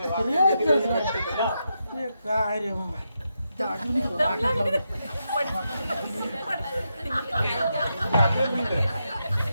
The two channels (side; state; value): both; inverted; correlation -0.85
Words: ते काय रे बाबा त्या अजूनही तो वाटच लावली.